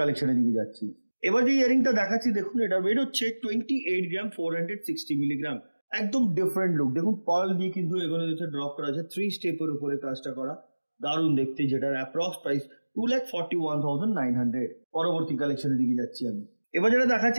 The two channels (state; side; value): inverted; both; correlation -1.00